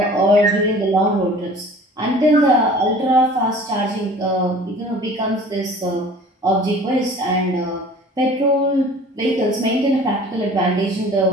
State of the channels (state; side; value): normal; both; correlation 0.46